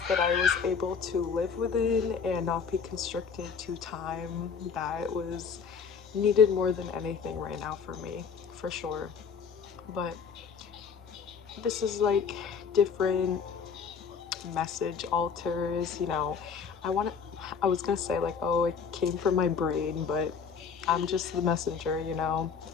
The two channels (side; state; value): right; quieter; 6.2 dB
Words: that I was able to live within and not be constricted to time, that was needed more than anything right now for me, for sure. But this is like different message alters, I was gonna say like, oh, it came from my brain, but I'm just the messenger,